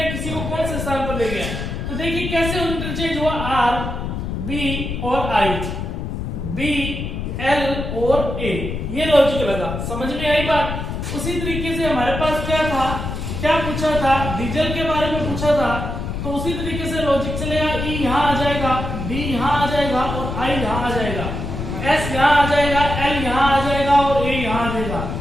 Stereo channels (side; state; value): left; noise; rumble, 4 dB below the sound